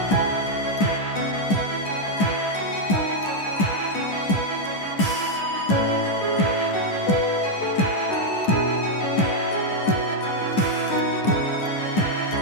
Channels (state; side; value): late; right; 10 ms